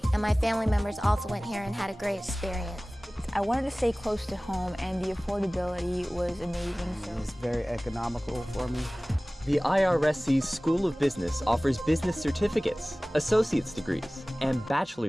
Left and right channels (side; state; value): both; normal; correlation 0.98